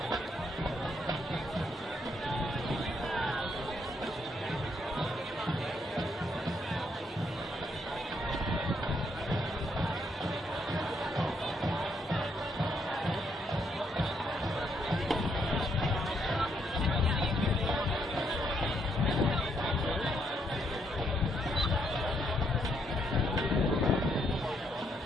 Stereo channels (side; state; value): both; normal; correlation 0.74